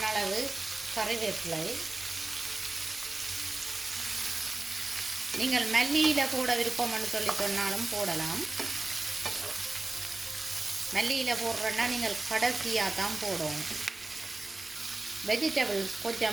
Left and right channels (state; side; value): quieter; left; 3.1 dB